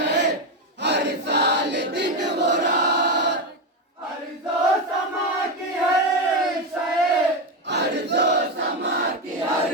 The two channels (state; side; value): normal; both; correlation 0.11